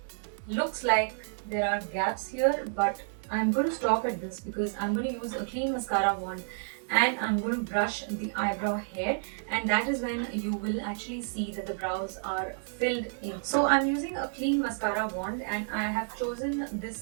looks like there are gaps here, but I'm going to stop at this because I'm going to use a clean mascara wand and I'm going to brush the eyebrow hair, and that is when you will actually see that the brows are filled in. So I'm using a clean mascara wand and I have chosen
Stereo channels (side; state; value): left; silent; digital silence